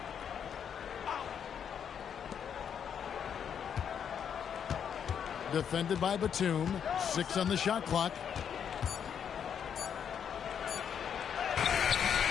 Defended by Batum. 6 on the shot clock.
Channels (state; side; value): quieter; right; 8.0 dB